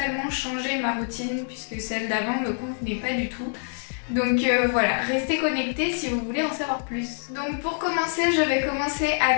changé ma routine puisque celle d'avant me convenait pas du tout. Donc voilà, restez connectés si vous voulez en savoir plus. Donc pour commencer, je vais commencer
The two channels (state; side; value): silent; right; 61 dB below the other